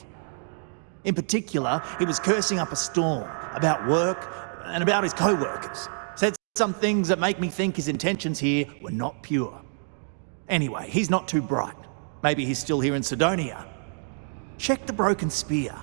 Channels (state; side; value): silent; left; digital silence